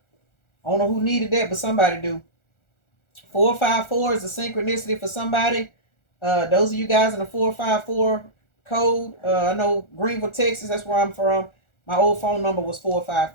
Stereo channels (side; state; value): right; late; 1.4 ms